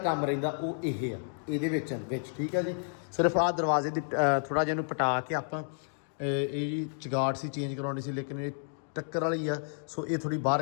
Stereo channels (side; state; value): right; silent; digital silence